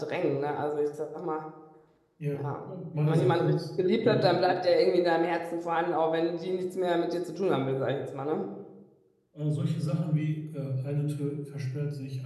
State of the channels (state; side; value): identical; both; correlation 1.00